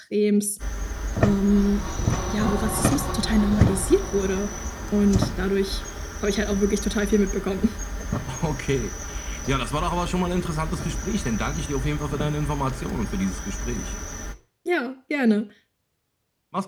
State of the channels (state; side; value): identical; both; correlation 1.00